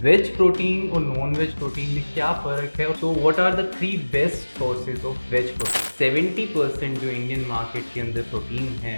वेज प्रोटीन और नॉन वेज प्रोटीन में क्या फ़र्क है? So what are the 3 best sources of veg protein? 70% जो इंडियन मार्केट के अंदर प्रोटीन है,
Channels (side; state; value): both; inverted; correlation -1.00